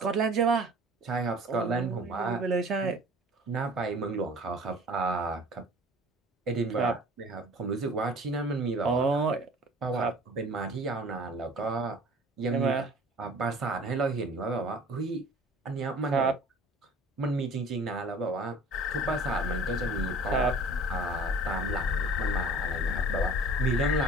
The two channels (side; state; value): both; normal; correlation 0.46